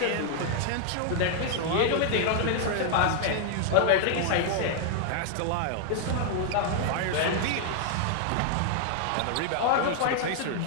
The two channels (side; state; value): both; different; correlation 0.00